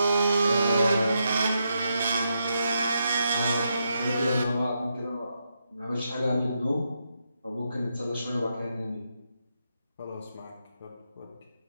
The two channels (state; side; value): inverted; both; correlation -0.83